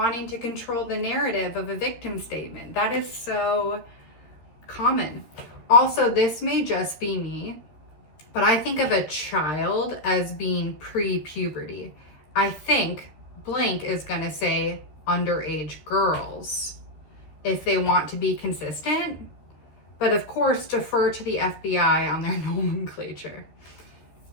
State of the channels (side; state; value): right; late; 13 ms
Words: to control the narrative of a victim statement. That is so common. Also, this may just be me, but I think of a child as being pre-puberty. I think blank is going to say underage girls if they want to be consistent, but of course defer to the FBI on their nomenclature.